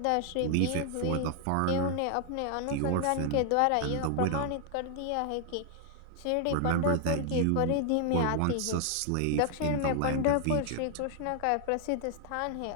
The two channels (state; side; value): different; both; correlation 0.00